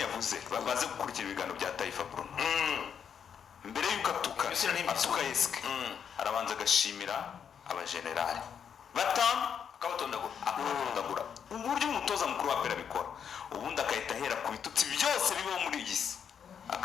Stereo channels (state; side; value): quieter; right; 7.6 dB